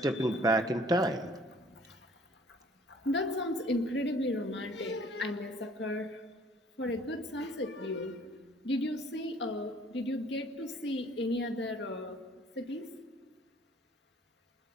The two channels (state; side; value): normal; both; correlation 0.56